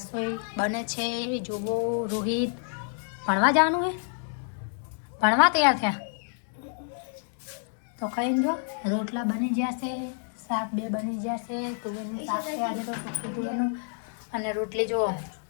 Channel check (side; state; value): right; silent; 59 dB below the other